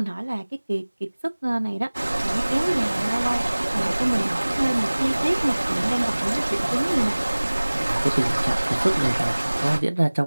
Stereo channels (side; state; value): both; inverted; correlation -1.00